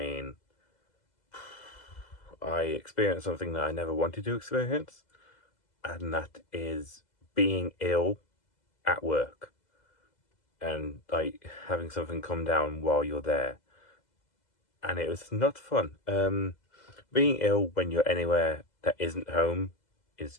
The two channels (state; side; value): late; right; 2.0 ms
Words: I experienced something that I never wanted to experience, and that is being ill at work and like having something come down while you're there. And it was not fun. Being ill when you're anywhere that isn't home is